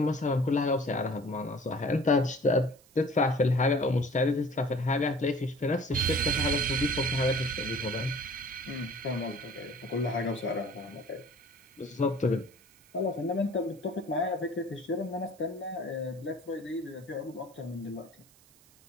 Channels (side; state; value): right; noise; hiss, 28 dB below the sound